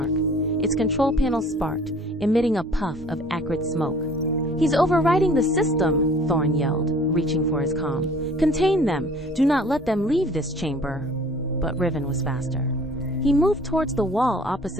Its control panel sparked, emitting a puff of acrid smoke. "He's overriding the system," Thorn yelled, reaching for his comm. "Contain them! Do not let them leave this chamber!" But Riven was faster. He moved towards the wall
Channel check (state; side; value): normal; both; correlation 0.51